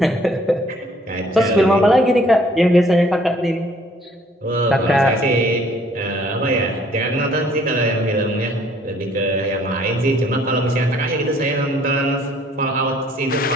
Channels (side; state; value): both; normal; correlation 0.60